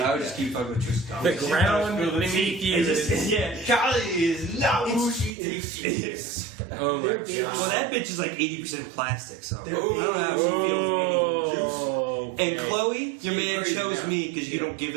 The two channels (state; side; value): drops out; left; at 5.3 s